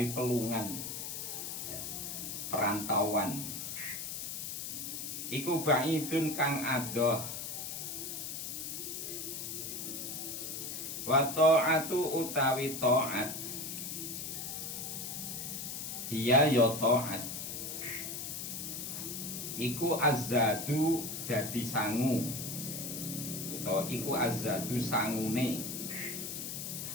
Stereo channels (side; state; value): left; noise; hiss, 5 dB below the sound